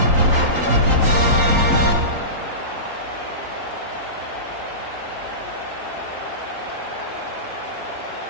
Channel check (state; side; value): late; left; 3.8 ms